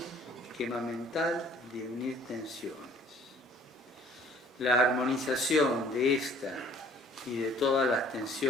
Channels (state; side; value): normal; both; correlation 0.56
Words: Esquema mental de unir tensiones. La armonización de esta y de todas las